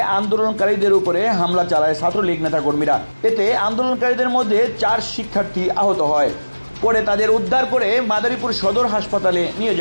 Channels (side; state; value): both; inverted; correlation -1.00